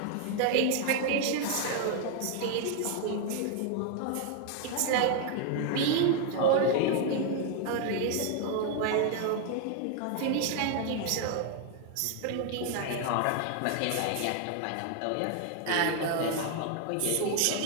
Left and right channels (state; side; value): different; both; correlation 0.00